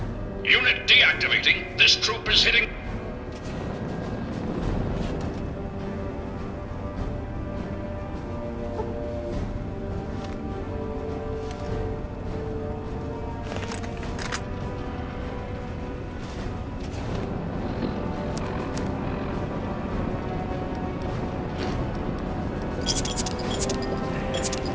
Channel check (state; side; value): identical; both; correlation 1.00